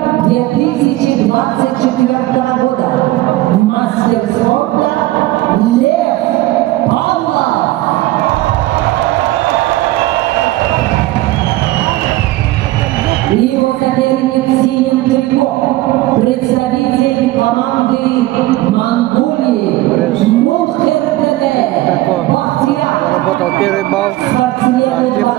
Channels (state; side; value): quieter; left; 17.2 dB